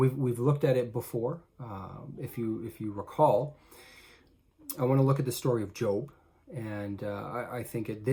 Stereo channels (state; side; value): identical; both; correlation 1.00